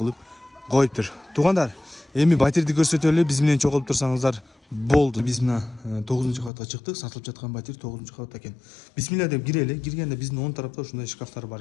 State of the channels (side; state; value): right; drops out; at 6.5 s